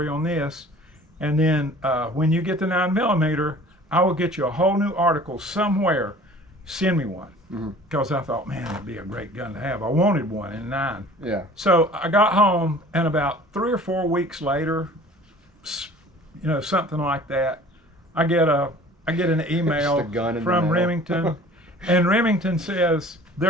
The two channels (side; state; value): both; normal; correlation 0.47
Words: on this, and then when you get the 9mm, I will get you a whole new article somewhere. Send me one, because I thought, man, it'd be a great gun to have. I wanted one in 9. Yeah. So I got home, and about 3 or 4 weeks later, you know, something like that, I get an email from Remington, and Remington says